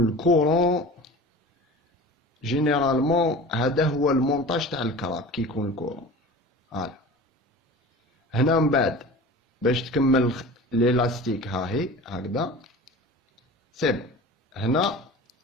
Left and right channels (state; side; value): normal; both; correlation 0.37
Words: الكورون جينيرالمون هذا هو المونتاج تاع الكراب. كي يكون الكورون هنا من بعد باش تكمل ليلاستيك هاهي هكذا سيب. هنا